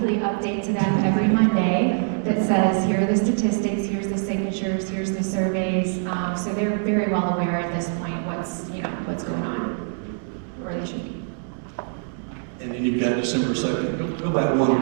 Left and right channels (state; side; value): silent; left; 58 dB below the other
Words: update to them every Monday that says, here are the statistics, here's the signatures, here's the surveys. So they're very well aware at this point what's going on, where they should be. And then you've got December 2nd. Go back